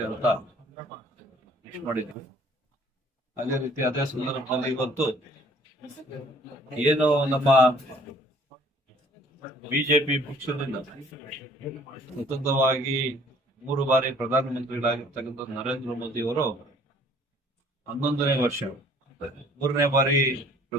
ಅಂತ ವಿಶ್ ಮಾಡಿದ್ರು. ಅದೇ ರೀತಿ ಅದೇ ಸಂದರ್ಭದಲ್ಲಿ ಇವತ್ತು ಏನು ನಮ್ಮ ಬಿಜೆಪಿ ಪಕ್ಷದಿಂದ ಸ್ವತಂತ್ರವಾಗಿ 3 ಬಾರಿ ಪ್ರಧಾನಮಂತ್ರಿಗಳಾಗಿರ್ತಕ್ಕಂಥ ನರೇಂದ್ರ ಮೋದಿ ಅವರು 11ನೇ ವರ್ಷ 3ನೇ ಬಾರಿ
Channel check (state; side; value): normal; both; correlation 0.56